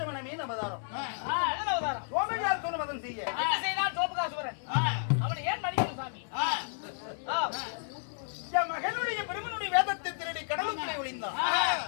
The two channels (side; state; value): right; silent; 56 dB below the other